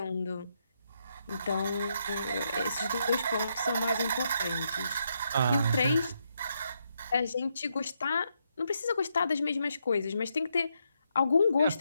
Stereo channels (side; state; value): both; inverted; correlation -0.79